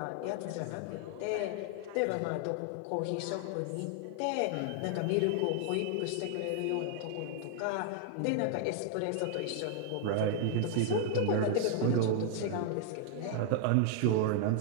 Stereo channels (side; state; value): both; different; correlation 0.00